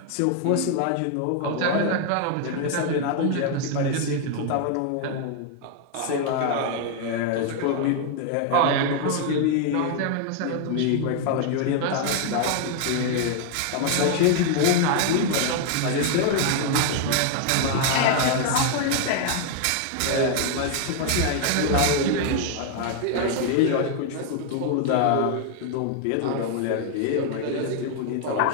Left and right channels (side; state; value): both; different; correlation 0.00